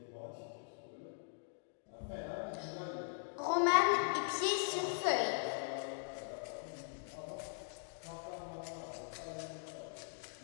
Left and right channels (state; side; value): silent; right; digital silence